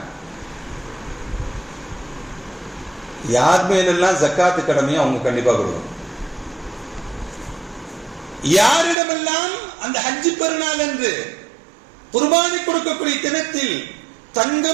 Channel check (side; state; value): left; drops out; at 9.0 s